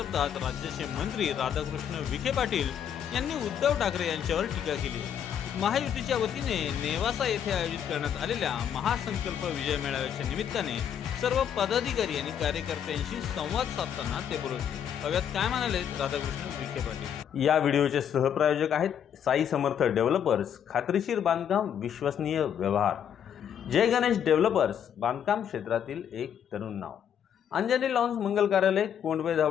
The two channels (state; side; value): quieter; right; 8.9 dB